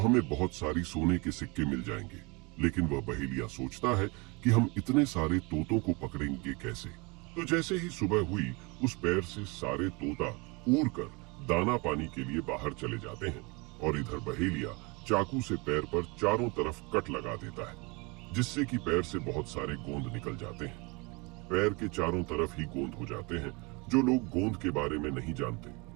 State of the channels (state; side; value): quieter; left; 28.0 dB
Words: बहुत सारी सोने के सिक्के मिल जाएंगे। लेकिन वह बहेलिया सोचता है कि हम इतने सारे तोतों को पकड़ेंगे कैसे। तो जैसे ही सुबह हुई उस पैर से सारे तोता उड़कर दाना पानी के लिए बाहर चले जाते हैं और इधर बहेलिया चाकू से पैर पर चारों तरफ कट लगा देता है जिससे कि पैर से बहुत सारे गोंद निकल जाते हैं। पैर के चारों तरफ ही गोंद हो जाते हैं। जो लोग गोंद के बारे में नहीं जानते,